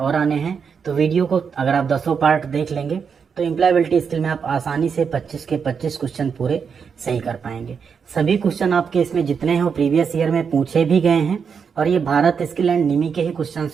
आने हैं, तो वीडियो को अगर आप 10 पार्ट देख लेंगे तो एम्प्लॉयबिलिटी स्किल में आप आसानी से 25 के 25 क्वेश्चन पूरे सही कर पाएंगे। सभी क्वेश्चन आपके इसमें जितने हैं वो प्रीवियस ईयर में पूछे भी गए हैं, और ये भारत स्किल एंड निमी के ही क्वेश्चन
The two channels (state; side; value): quieter; left; 6.3 dB